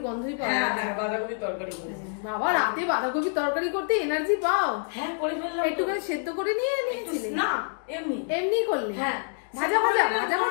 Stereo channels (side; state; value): right; silent; digital silence